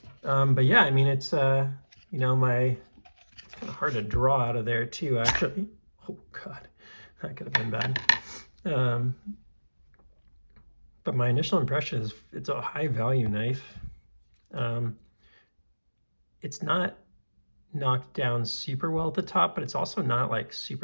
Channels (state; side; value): inverted; both; correlation -1.00